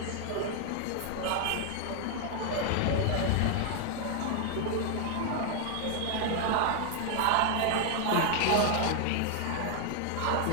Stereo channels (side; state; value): both; different; correlation 0.00